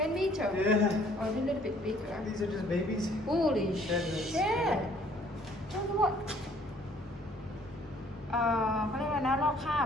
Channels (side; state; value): both; normal; correlation 0.60